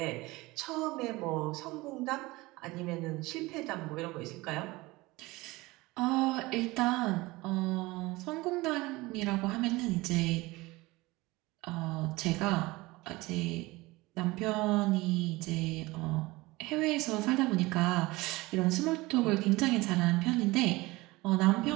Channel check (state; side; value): quieter; left; 21.3 dB